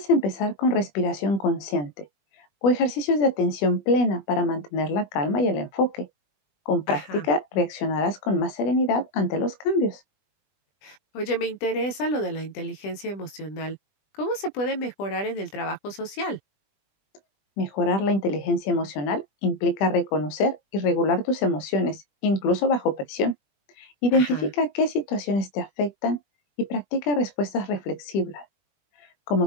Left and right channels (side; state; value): right; late; 20 ms